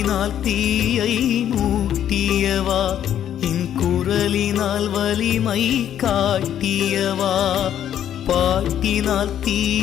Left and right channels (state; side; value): quieter; right; 10.3 dB